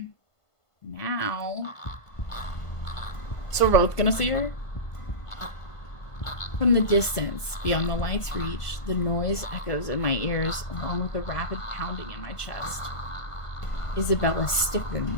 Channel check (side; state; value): right; late; 1.5 ms